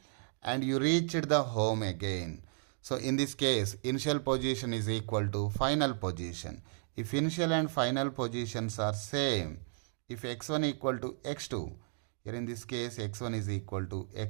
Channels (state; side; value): silent; left; digital silence